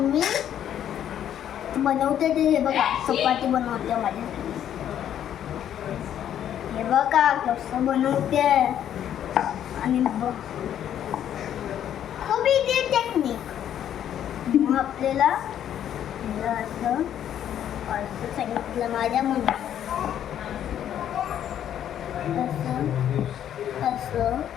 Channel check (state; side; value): quieter; right; 10.3 dB